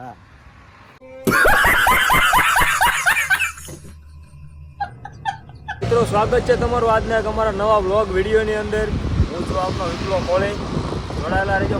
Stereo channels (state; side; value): identical; both; correlation 1.00